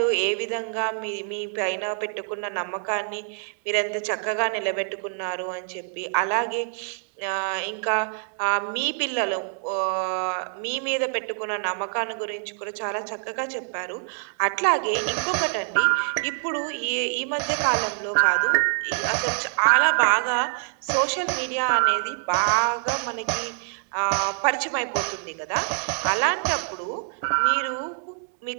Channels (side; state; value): left; silent; digital silence